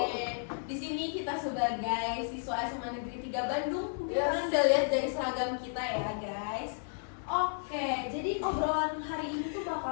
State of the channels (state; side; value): silent; right; 56 dB below the other